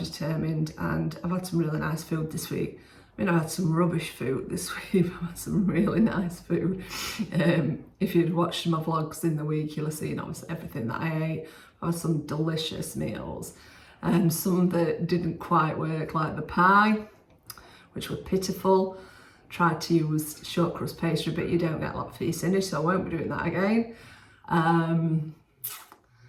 and I've had some really nice food this week. I mean, I've had some rubbish food this week. I've had some really nice food. If you'd watched my vlogs in the week, you'll have seen obviously everything that I ate. I've had some delicious meals. Some that didn't quite work, like the pie, which were pitiful. Tried to use short crust pastry, but you don't get a lot for your sinnage, so I won't be doing that again.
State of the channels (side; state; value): both; identical; correlation 1.00